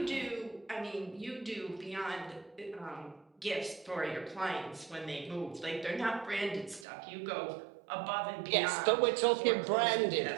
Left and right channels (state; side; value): drops out; left; at 6.9 s